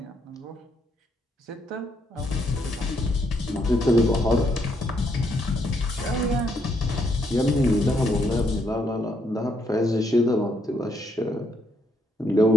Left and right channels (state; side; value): normal; both; correlation 0.74